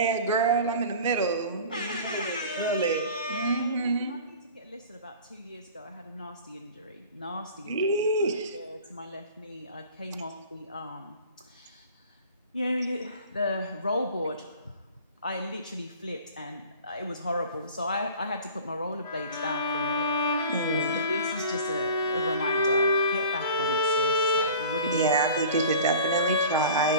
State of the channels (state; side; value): inverted; both; correlation -0.41